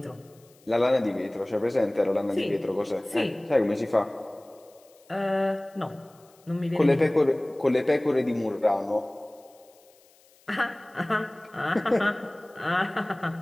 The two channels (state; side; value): noise; left; hiss, 30 dB below the sound